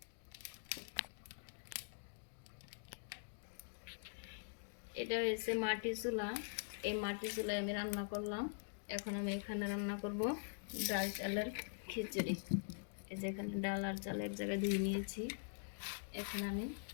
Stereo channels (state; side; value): silent; right; digital silence